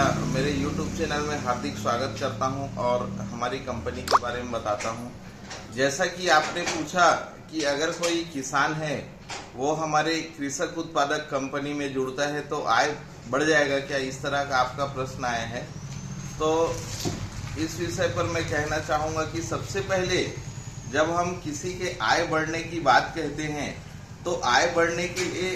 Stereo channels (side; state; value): both; identical; correlation 1.00